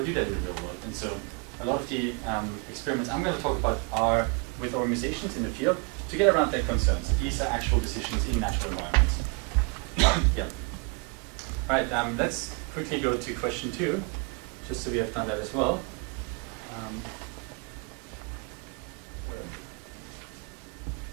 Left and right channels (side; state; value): left; quieter; 33.0 dB